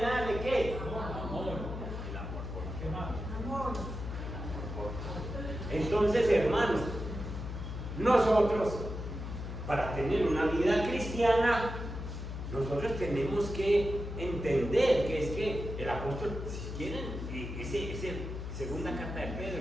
¿qué? Amor. El amor por qué más. Amor. Entonces, hermanos, nosotros, para tener una vida cristiana, nosotros tenemos que entender que es que el apóstol, si quieren, esa segunda carta de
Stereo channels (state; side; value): noise; left; hum, 6 dB below the sound